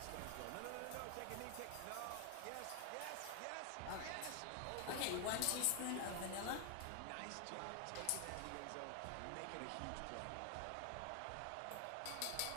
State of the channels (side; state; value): both; different; correlation 0.00